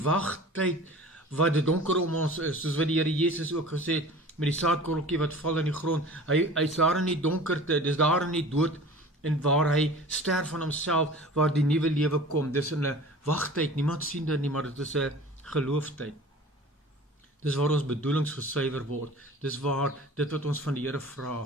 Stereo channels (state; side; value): normal; both; correlation 0.42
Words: wat dit donker om ons is, soos wat die Here Jesus ook gesê het, met die saadkorreltjie wat val in die grond, hy is daar in die donkerte, dis daar in die dood, en waar hy sterf van homself, waar die nuwe lewe kom, dis in 'n wagtyd, niemand sien dit nie, maar dit is 'n gelooftyd. Dis waar ons bedoelings gesuiwer word, dis waar dit wat ons van die Here